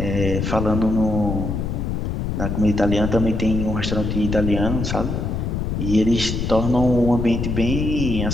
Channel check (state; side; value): noise; left; rumble, 2 dB below the sound